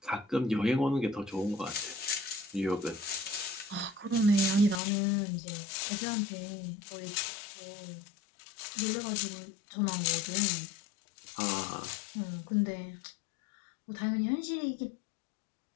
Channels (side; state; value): right; drops out; at 4.8 s